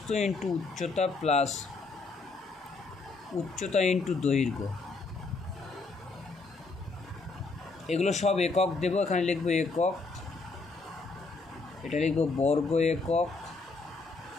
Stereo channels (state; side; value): quieter; right; 3.9 dB